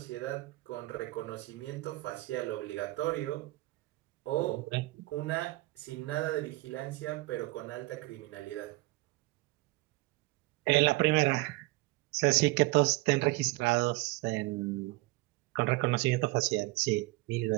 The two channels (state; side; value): quieter; left; 20.7 dB